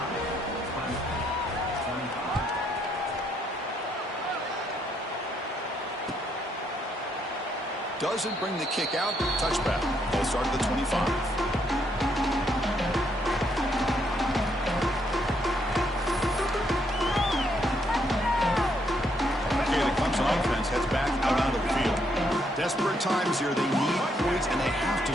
Doesn't bring the kick out. Touchback. Ball start at the 25. Okay, the Clemson offense heads back out onto the field. Desperate times here. They need points, and they have to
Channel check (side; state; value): both; normal; correlation 0.73